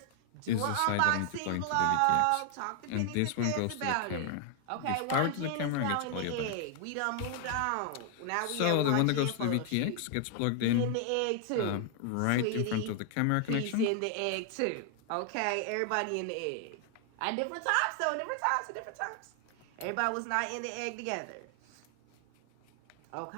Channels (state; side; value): different; both; correlation 0.00